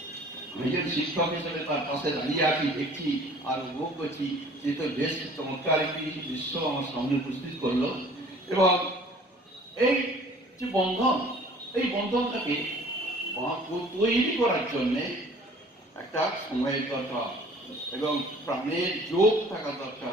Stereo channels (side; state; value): both; normal; correlation 0.51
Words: আমি যে শিক্ষক হিসেবে তার পাশে দাঁড়িয়ে আছি, দেখছি আর উপভোগ করছি, যে তো বেশ চমৎকার একটি দৃশ্য আমার সামনে উপস্থিত করলো। এবং এই যে বন্ধন, এই বন্ধনটাকে তৈরি করার জন্যে একটা সময়ের দরকার এবং প্রাণের যোগ থাকা